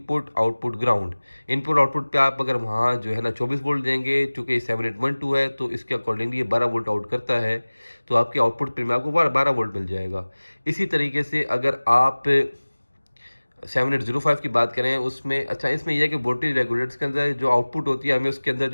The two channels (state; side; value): inverted; both; correlation -1.00